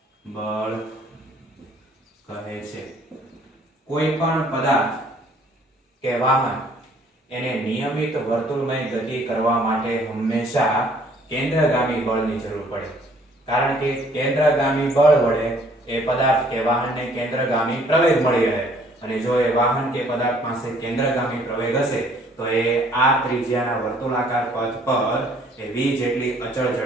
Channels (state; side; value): normal; both; correlation 0.59